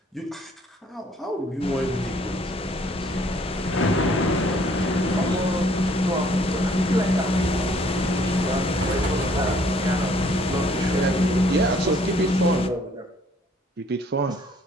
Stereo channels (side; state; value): both; normal; correlation 0.61